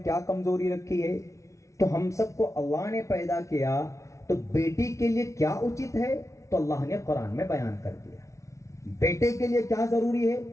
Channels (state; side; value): late; right; 0.14 ms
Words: کمزوری رکھی ہے. تو ہم سب کو اللہ نے پیدا کیا تو بیٹی کے لیے کیا اچت ہے تو اللہ نے قرآن میں بیان کر دیا. بیٹے کے لیے کیا ضروری ہے